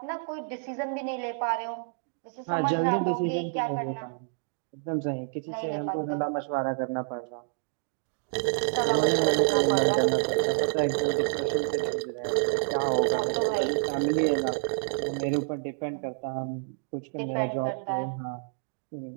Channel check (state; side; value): silent; left; digital silence